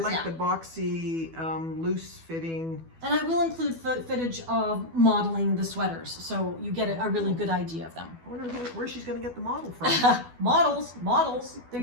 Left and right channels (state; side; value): late; left; 12 ms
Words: patterns, like yeah. the boxy, loose fitting. And I will include footage of modeling the sweaters, so you get a really good idea of them. I wonder where she's going to get the model from. Models. There